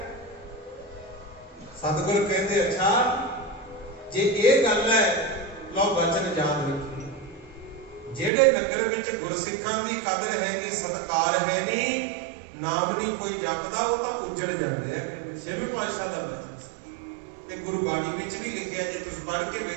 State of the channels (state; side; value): drops out; left; at 8.3 s